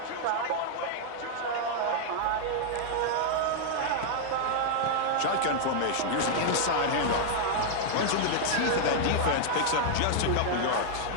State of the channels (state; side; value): different; both; correlation -0.01